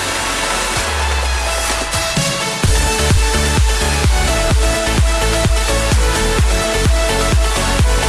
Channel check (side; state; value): both; identical; correlation 1.00